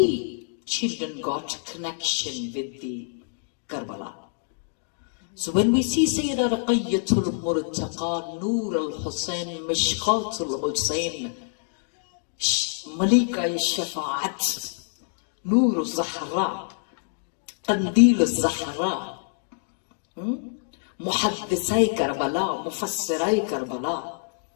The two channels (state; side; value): silent; right; digital silence